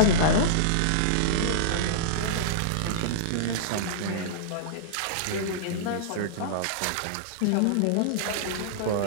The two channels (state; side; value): different; both; correlation -0.02